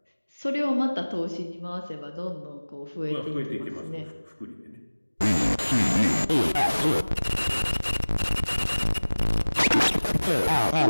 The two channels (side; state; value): both; inverted; correlation -1.00